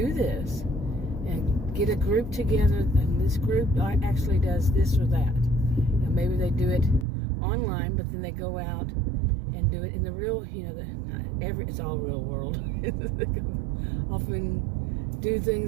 this and get a group together, and this group actually does this or that. Maybe they do it online, but then they go out and do it in the real, it's all real world. Often do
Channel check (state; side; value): drops out; left; at 7.1 s